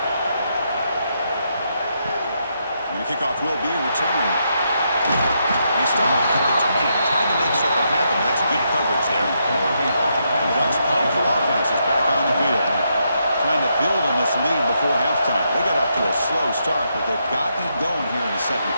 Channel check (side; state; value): both; inverted; correlation -0.79